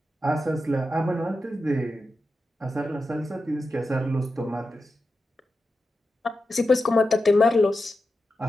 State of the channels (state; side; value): normal; both; correlation 0.90